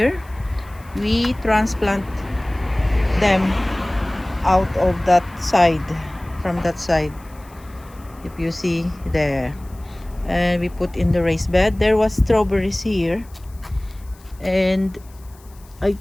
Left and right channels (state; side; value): noise; left; hiss, 27 dB below the sound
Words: We transplant them out of that side, from that side, if you see there, and we put in the raised bed. There was strawberries here, and I